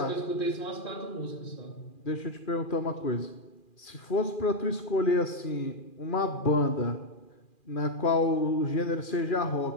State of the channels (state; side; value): late; right; 2.4 ms